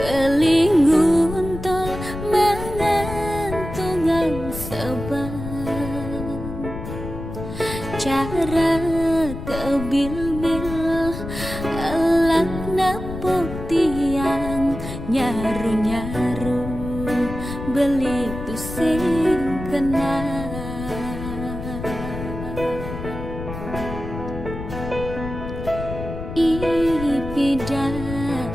tol mengantungan seban cara kebil-bil elak nepuk tiang nyaru-nyaru beli tusing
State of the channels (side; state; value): left; noise; rumble, 8 dB below the sound